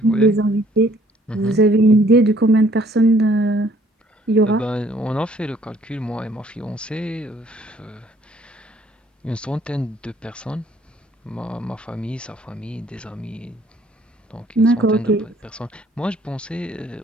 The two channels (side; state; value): both; normal; correlation 0.60